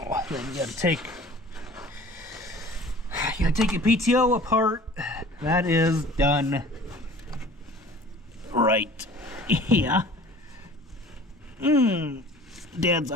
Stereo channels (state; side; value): normal; both; correlation 0.46